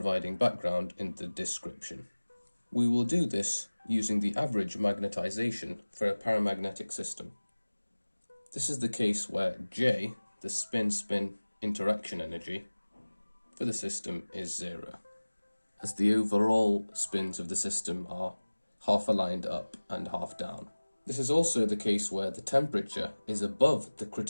background in the description. We will do this using the average magnetization for a paramagnetic system. This is the case where J, the spin-spin interaction energy, for the system is zero, as the overall spins of the system are half aligned up and half down. This is also the case where the temperature is above the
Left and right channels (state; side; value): inverted; both; correlation -1.00